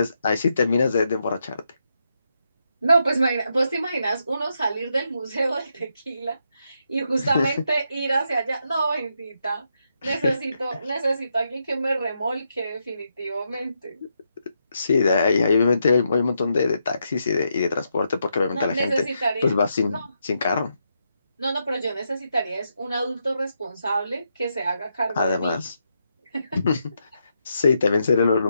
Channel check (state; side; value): inverted; both; correlation -0.81